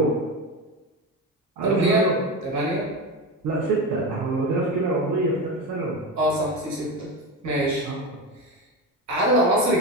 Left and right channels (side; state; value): both; normal; correlation 0.20